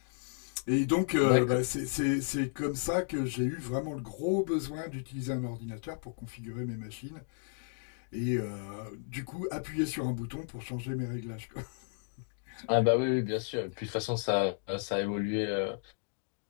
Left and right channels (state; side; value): silent; right; digital silence